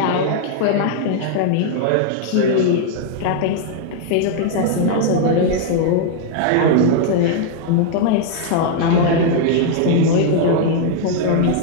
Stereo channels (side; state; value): both; different; correlation -0.01